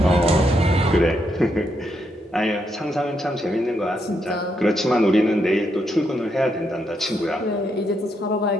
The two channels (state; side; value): normal; both; correlation 0.79